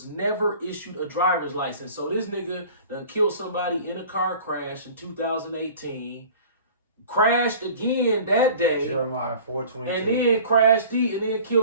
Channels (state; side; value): inverted; both; correlation -0.45